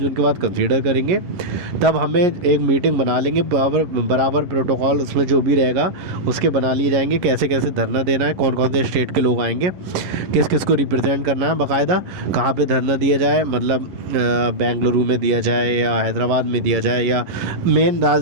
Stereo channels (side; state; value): left; late; 11 ms